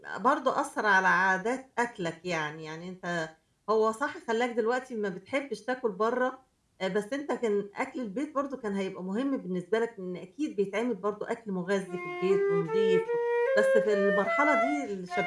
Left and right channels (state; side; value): identical; both; correlation 1.00